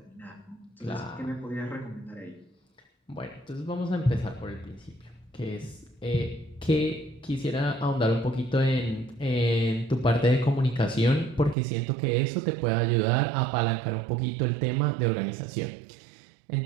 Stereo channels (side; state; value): left; drops out; at 11.6 s